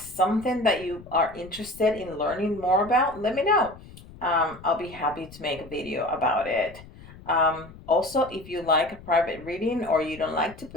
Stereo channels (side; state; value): left; noise; rumble, 19 dB below the sound